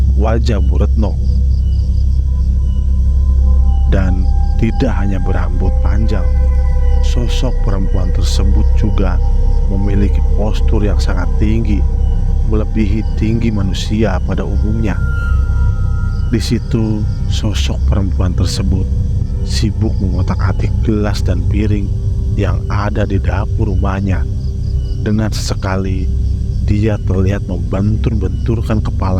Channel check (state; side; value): identical; both; correlation 1.00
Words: wajah Bu Retno. Dan tidak hanya berambut panjang, sosok perempuan tersebut juga memiliki postur yang sangat tinggi, melebihi tinggi manusia pada umumnya. Di situ sosok perempuan tersebut sibuk mengotak-atik gelas dan piring yang ada di dapur rumahnya. Dengan sesekali dia terlihat membentur-benturkan